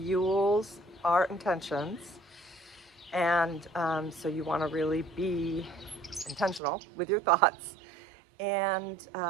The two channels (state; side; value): drops out; left; at 6.6 s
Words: our intentions. And so you want to really be intentional with your thoughts, and